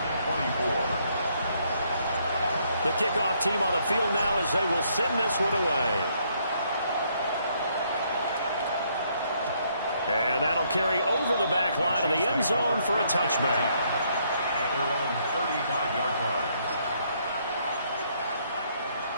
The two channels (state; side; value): inverted; both; correlation -0.70